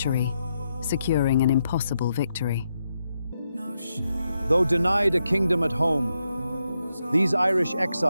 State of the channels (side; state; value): both; inverted; correlation -0.83